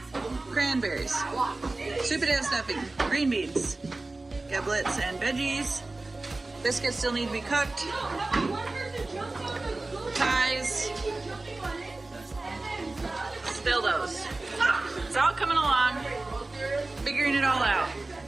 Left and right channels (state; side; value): quieter; left; 3.1 dB